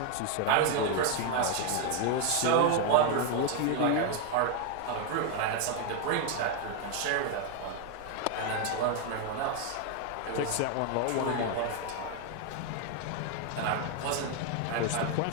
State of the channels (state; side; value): different; both; correlation 0.01